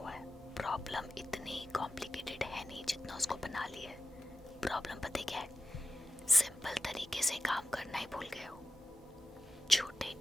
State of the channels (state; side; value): normal; both; correlation 0.90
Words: है। प्रॉब्लम इतनी कॉम्प्लिकेटेड है नहीं जितना उसको बना लिया है। प्रॉब्लम पता क्या है? सिंपल तरीके से काम करना ही भूल गए हो। छोटे